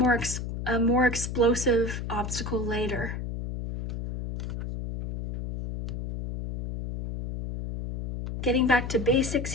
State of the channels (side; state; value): left; noise; hum, 5 dB below the sound